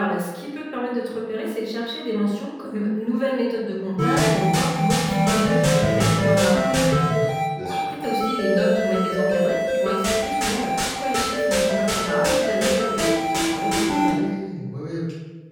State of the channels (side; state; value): both; identical; correlation 1.00